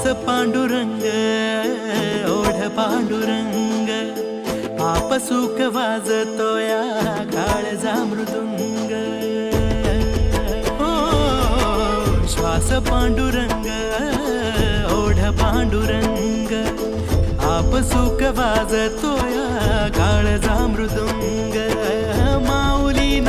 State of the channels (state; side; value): identical; both; correlation 1.00